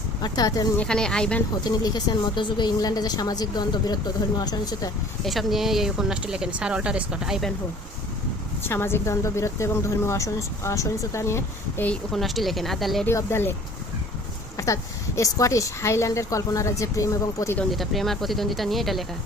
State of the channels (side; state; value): both; normal; correlation 0.50